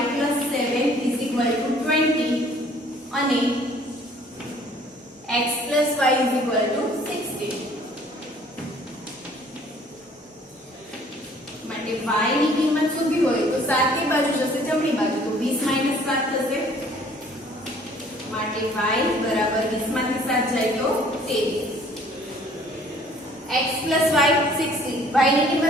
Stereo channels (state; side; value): normal; both; correlation 0.56